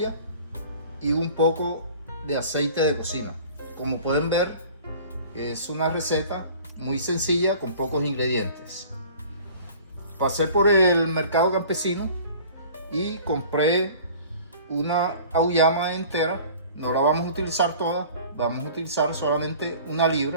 y un poco de aceite de cocina. Como pueden ver, es una receta muy sencilla con pocos ingredientes. Pasé por el mercado campesino y compré una auyama entera. No la vamos a utilizar toda, vamos a utilizar solamente una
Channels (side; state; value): both; inverted; correlation -0.46